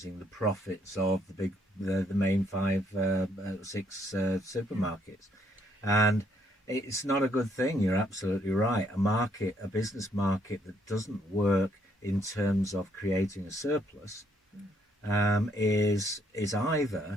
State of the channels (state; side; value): normal; both; correlation 0.70